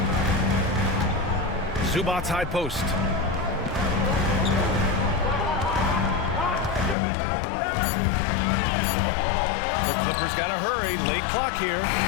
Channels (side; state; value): right; drops out; at 7.0 s